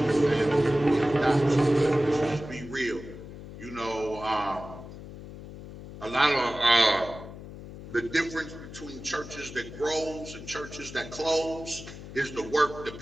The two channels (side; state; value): left; noise; hum, 13 dB below the sound